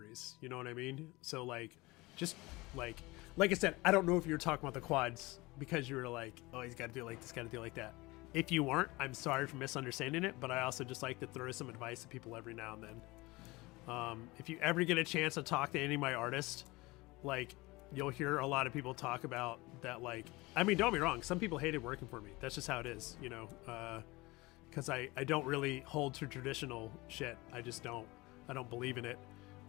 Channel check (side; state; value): right; quieter; 22.4 dB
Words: You know what I mean? So like, just like I said, I don't know if you were talking about the quads because you were like, oh, he's got to do it like this, got to do it like that. If you weren't, I'm sorry for misunderstanding it, but I also just like to throw some advice to people every now and then. If you ever get a chance to talk to any of my artists, like, you'll hear a lot of people talk about that. Like, I mean, don't be wrong, some people hated working for me. That's just how it is, you know, because I don't really hold to traditional shit. I just don't. I don't believe in it.